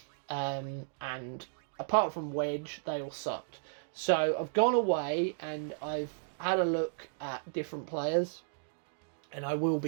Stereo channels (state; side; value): silent; left; digital silence